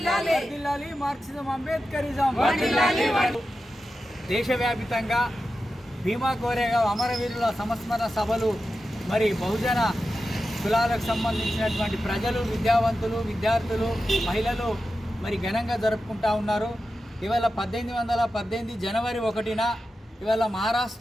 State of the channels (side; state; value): both; normal; correlation 0.91